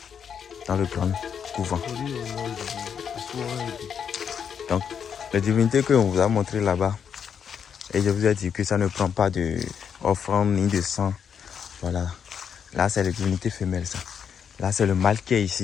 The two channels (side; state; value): right; quieter; 7.5 dB